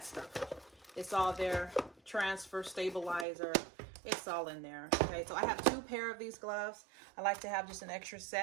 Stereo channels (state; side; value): drops out; left; at 3.2 s